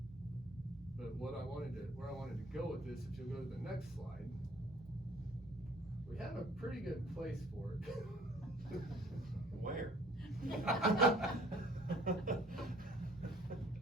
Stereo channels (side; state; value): right; noise; hum, 26 dB below the sound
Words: But where I wanted to go with this, if you'll go to the next slide, we have a pretty good place for it. Where?